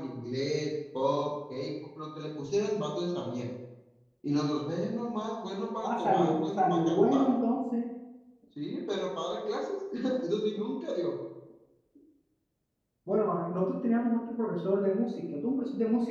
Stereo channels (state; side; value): identical; both; correlation 1.00